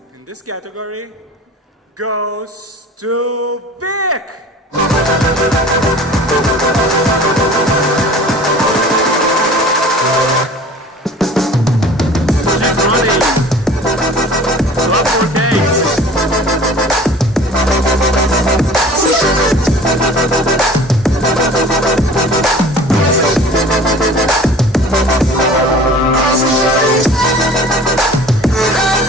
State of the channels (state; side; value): normal; both; correlation 0.44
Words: in this category goes to Vic. Keep running. Drop more cakes.